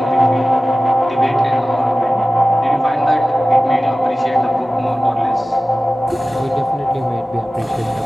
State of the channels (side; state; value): both; normal; correlation 0.96